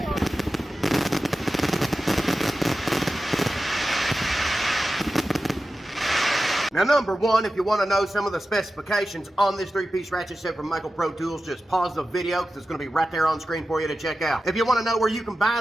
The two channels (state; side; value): normal; both; correlation 0.93